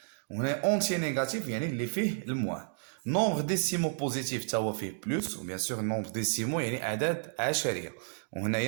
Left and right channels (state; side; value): silent; left; digital silence